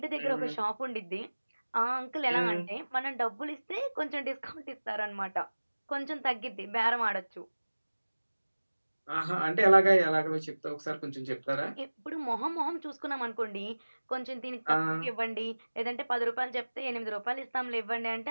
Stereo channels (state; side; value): inverted; both; correlation -1.00